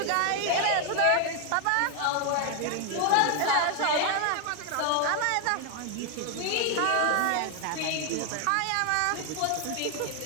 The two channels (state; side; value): different; both; correlation 0.01